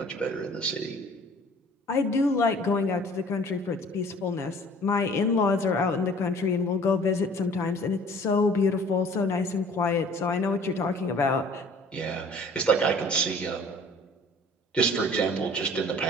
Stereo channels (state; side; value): normal; both; correlation 0.50